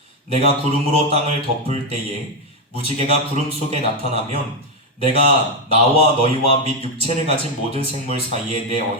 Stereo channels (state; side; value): normal; both; correlation 0.05